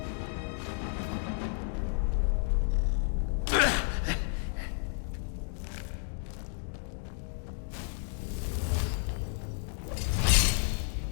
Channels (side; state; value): right; silent; 57 dB below the other